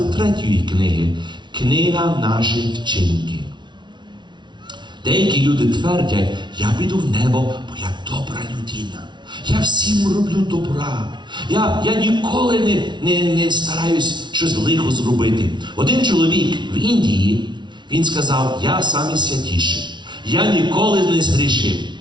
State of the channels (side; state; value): left; late; 0.22 ms